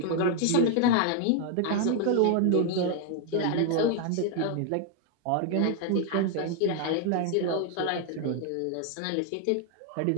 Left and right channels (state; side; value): different; both; correlation 0.01